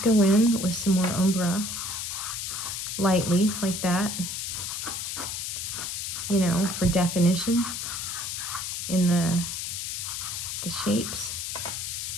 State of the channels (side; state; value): left; noise; hiss, 4 dB below the sound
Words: go in with some more Umbra, lightly, like that, you know, for definition in the shapes.